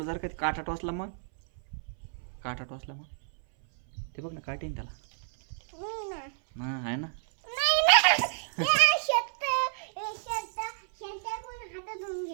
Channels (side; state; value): left; silent; 58 dB below the other